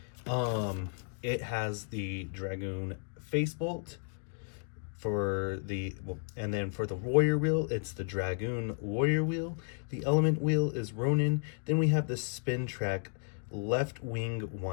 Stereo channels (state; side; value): silent; right; 56 dB below the other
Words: it has the Dragoon face bolt for the, and then for the warrior wheel, it's the Dragoon warrior wheel. The element wheel is Ronin. Then we have the spin track left wing